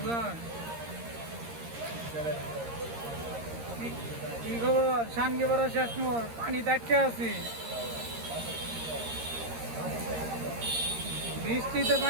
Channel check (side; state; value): left; late; 13 ms